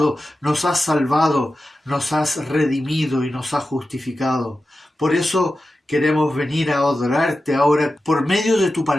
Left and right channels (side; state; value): both; normal; correlation 0.93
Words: nos has salvado, nos has redimido y nos has justificado. Por eso queremos venir a adorarte ahora por medio de tu